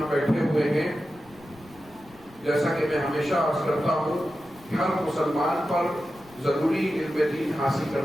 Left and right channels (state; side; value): noise; left; rumble, 25 dB below the sound